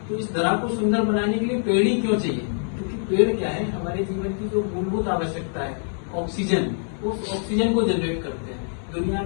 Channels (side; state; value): right; silent; digital silence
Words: तो इस धरा को सुंदर बनाने के लिए पेड़ ही क्यों चाहिए? क्योंकि पेड़ क्या है, हमारे जीवन की जो मूलभूत आवश्यकता है ऑक्सीजन, उस ऑक्सीजन को जनरेट करते हैं। दुनिया